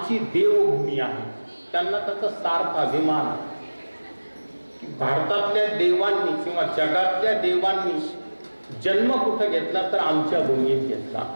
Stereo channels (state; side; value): inverted; both; correlation -1.00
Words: देवभूमी आहे, त्यांना त्याचा सार्थ अभिमान आहे की भारतातल्या देवांनी किंवा जगातल्या देवांनी जन्म कुठं घेतला तर आमच्या भूमीत घेतला,